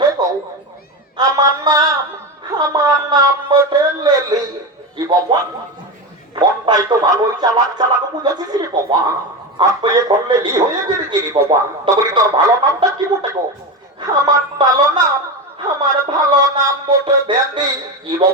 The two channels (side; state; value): both; normal; correlation 0.19